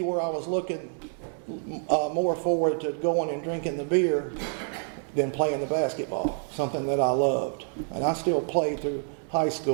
where I was looking more forward to going and drinking the beer than playing the basketball, something that I loved. And I still played through high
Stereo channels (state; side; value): silent; left; digital silence